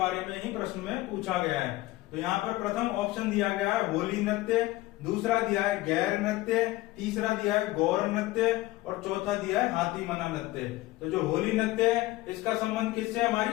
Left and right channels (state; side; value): quieter; right; 18.4 dB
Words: में ही प्रश्न में पूछा गया है। तो यहाँ पर प्रथम ऑप्शन दिया गया है होली नृत्य, दूसरा दिया है गैर नृत्य, तीसरा दिया है गौर नृत्य और चौथा दिया है हाथी मना नृत्य। तो जो होली नृत्य है इसका संबंध किससे,